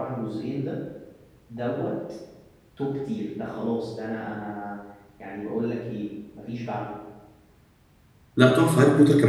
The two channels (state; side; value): identical; both; correlation 1.00